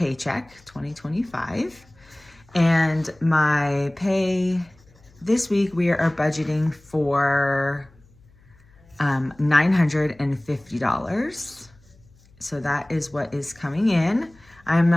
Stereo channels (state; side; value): noise; left; hum, 29 dB below the sound